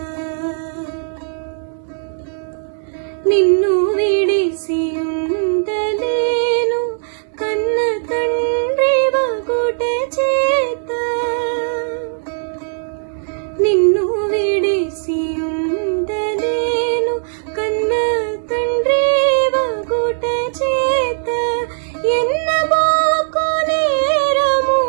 నిన్ను విడిసియుండలేను కన్న తండ్రి వగుట చేత, నిన్ను విడిసియుండలేను కన్న తండ్రి వగుట చేత, ఎన్నబోకు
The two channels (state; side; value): silent; left; 67 dB below the other